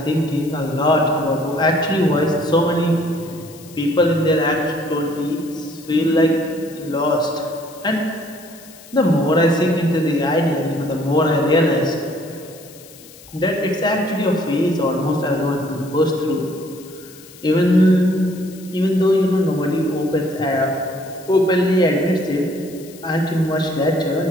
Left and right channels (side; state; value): left; noise; hiss, 21 dB below the sound